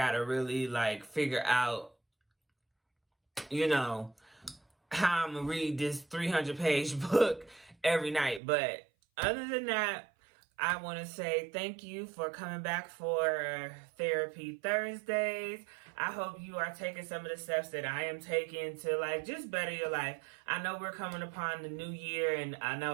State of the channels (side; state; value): left; drops out; at 8.4 s